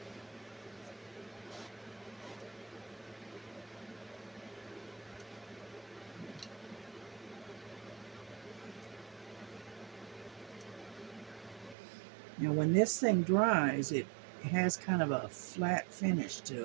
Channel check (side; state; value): left; drops out; at 11.8 s